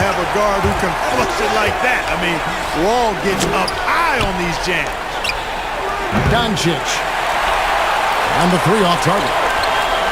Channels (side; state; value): both; identical; correlation 1.00